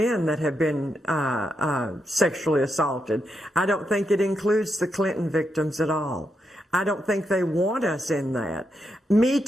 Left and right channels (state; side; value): normal; both; correlation 0.83